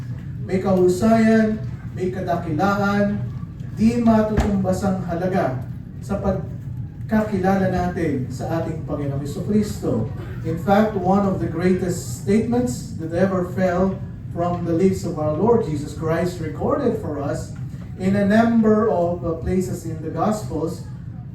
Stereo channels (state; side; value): identical; both; correlation 1.00